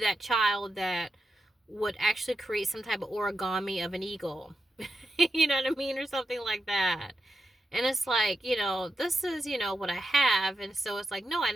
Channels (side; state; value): both; normal; correlation 0.88